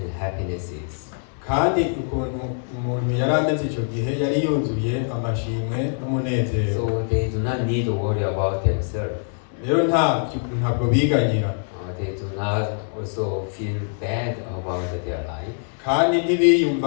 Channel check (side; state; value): right; silent; digital silence